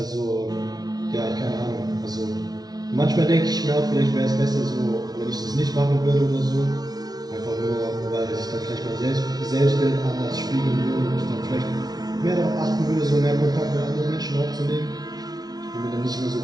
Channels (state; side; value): late; left; 0.19 ms